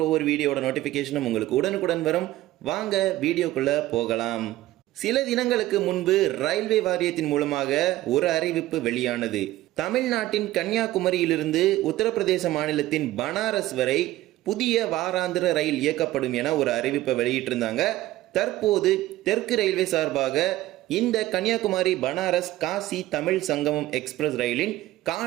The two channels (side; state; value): left; quieter; 16.0 dB